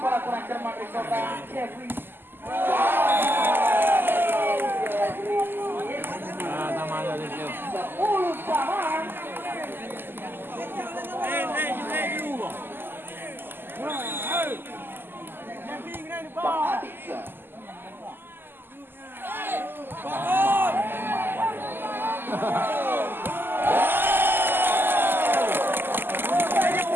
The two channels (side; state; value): left; late; 0.097 ms